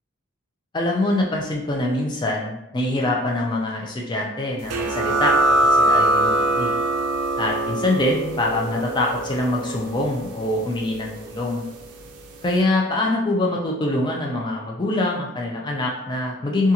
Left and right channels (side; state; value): both; normal; correlation 0.50